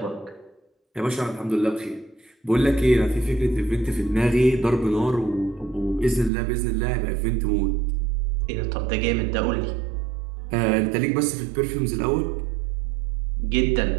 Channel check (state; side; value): drops out; left; at 6.3 s